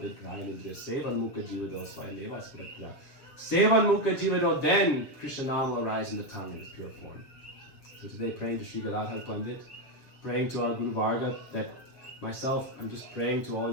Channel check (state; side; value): late; right; 7.5 ms